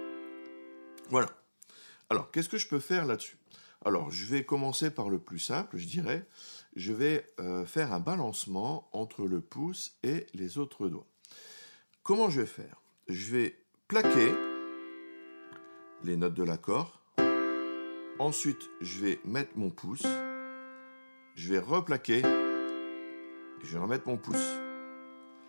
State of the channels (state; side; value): inverted; both; correlation -1.00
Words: Voilà. Alors, qu'est-ce que je peux faire là-dessus? Alors, je vais commencer par le plus simple, je dirais. Je vais faire un balancement entre le pouce et les autres doigts. Comment je vais faire? Je vais plaquer les notes de l'accord. Ensuite, je vais mettre mon pouce. Je vais replaquer. Et je vais remettre mon pouce.